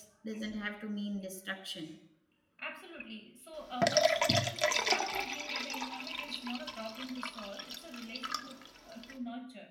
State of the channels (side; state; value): both; identical; correlation 1.00